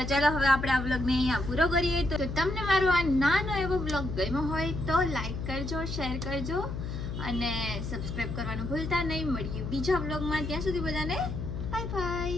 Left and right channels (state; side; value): noise; left; hum, 5 dB below the sound